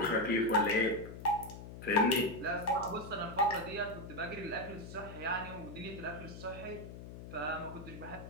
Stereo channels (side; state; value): left; noise; hum, 12 dB below the sound